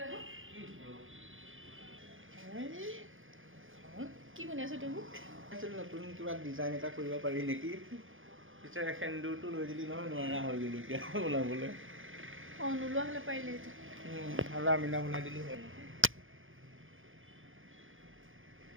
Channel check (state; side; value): late; left; 0.59 ms